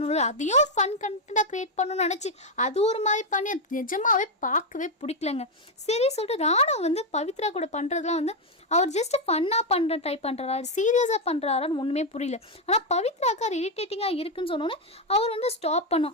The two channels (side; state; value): both; normal; correlation 0.03